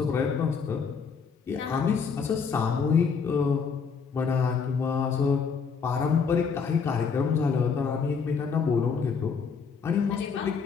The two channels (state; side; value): quieter; right; 5.8 dB